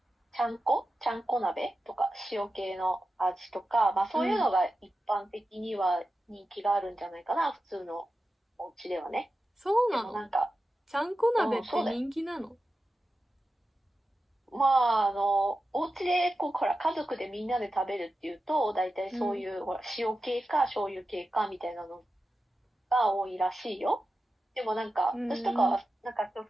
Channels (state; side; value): normal; both; correlation 0.92